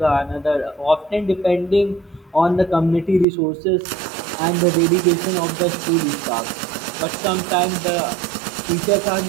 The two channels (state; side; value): drops out; left; at 3.2 s